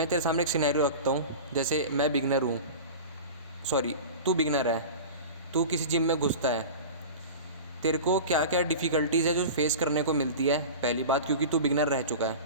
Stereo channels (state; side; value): inverted; both; correlation -0.32